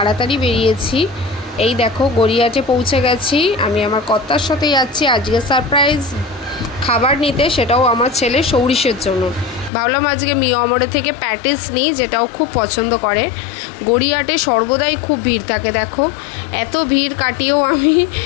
বেরিয়েছি। এই দেখো গড়িয়াহাটে পৌঁছে গেছি। আমি আমার কর্তার সাথে যাচ্ছি আজকে সারপ্রাইজ খাবার নিতে, সেটাও আমার ছেলে সৌরিশের জন্য। ভাবলাম আজকে মিও আমরে থেকে প্যাটিস নিই, যেটাও খুব পছন্দ করে। গড়িয়াহাটে সর্বদাই খুব ভিড় থাকে, দেখো এত ভিড় কাটিয়েও আমি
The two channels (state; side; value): drops out; right; at 9.7 s